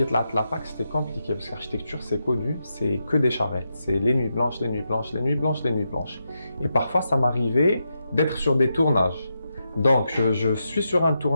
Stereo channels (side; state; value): both; inverted; correlation -0.86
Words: la fac, c'était compliqué. Parce qu'architecture, c'est connu, c'est que des charrettes. C'est les nuits blanches, les nuits blanches, les nuits blanches, les nuits blanches. Et parfois, ça m'arrivait d'être sur des tournages. Donc, je suis sur un